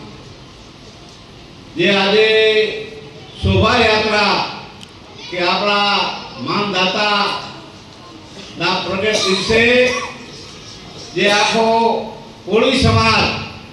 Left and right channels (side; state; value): both; identical; correlation 1.00